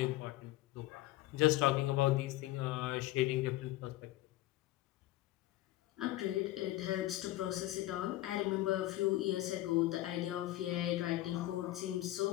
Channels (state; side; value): quieter; right; 16.3 dB